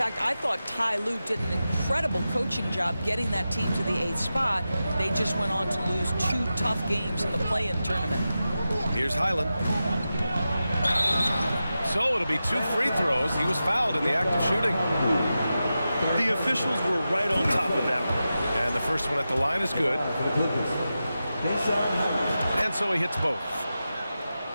I thought Ty Lue did an incredible coaching job getting that team to the 8th spot. They just went on to lose 2 tough games in the play-in tournament. Here's Highland. So it'll be 2 free throws. He was fouled in the act of shooting. The officials were right on top of that one. And the first one at the line is good. And so he hits both.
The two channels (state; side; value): inverted; both; correlation -0.92